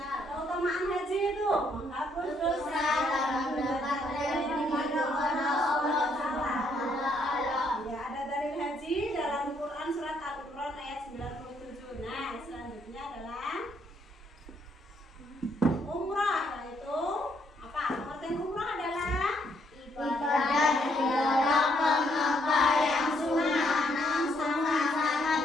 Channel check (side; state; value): both; normal; correlation 0.71